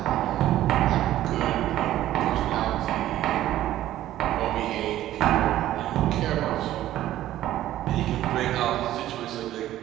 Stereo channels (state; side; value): quieter; left; 13.6 dB